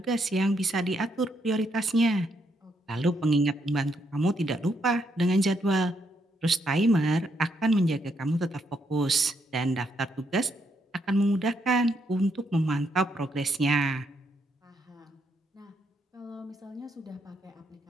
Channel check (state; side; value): normal; both; correlation 0.76